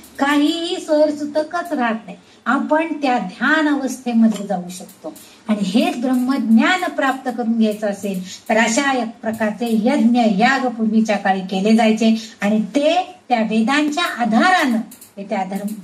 काहीही सोयरसुतकच राहत नाही. आपण त्या ध्यान अवस्थेमध्ये जाऊ शकतो आणि हेच ब्रह्मज्ञान प्राप्त करून घ्यायचं असेल तर अशा एक प्रकारचे यज्ञ याग पूर्वीच्या काळी केले जायचे आणि ते त्या वेदांच्या आधारानं, त्या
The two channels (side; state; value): both; identical; correlation 1.00